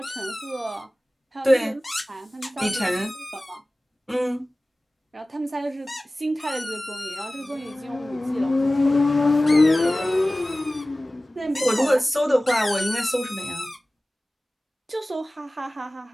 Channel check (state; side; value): normal; both; correlation 0.97